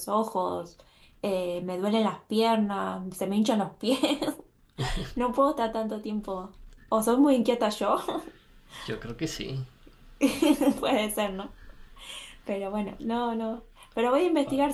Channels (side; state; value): both; identical; correlation 1.00